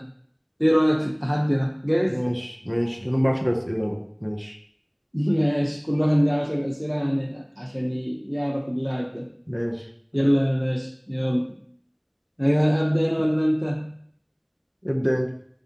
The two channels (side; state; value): both; identical; correlation 1.00